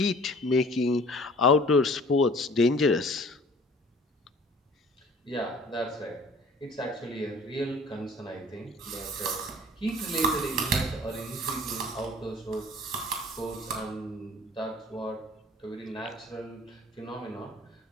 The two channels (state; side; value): normal; both; correlation 0.50